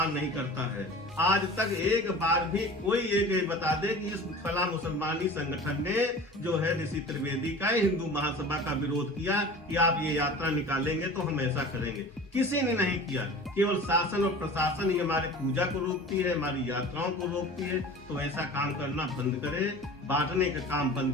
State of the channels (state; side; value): normal; both; correlation 0.39